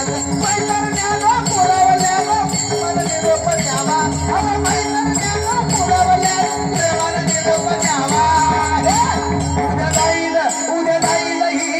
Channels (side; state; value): both; identical; correlation 1.00